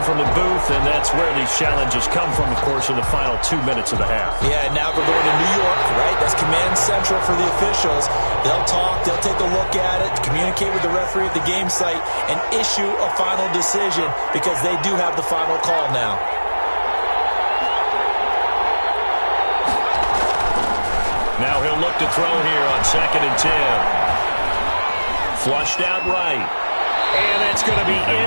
from the booth, and that's where these challenges come from, of course, in the final 2 minutes of the half. Yeah, now we're going to New York, right? That's command central for the officials. They'll talk, they'll take a look at it, communicate with the referee at the game site, and issue a final decision because they do have the final call now. Now he'll look to throw here on second and 10. Flushed out right. And it's going to be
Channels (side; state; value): both; inverted; correlation -1.00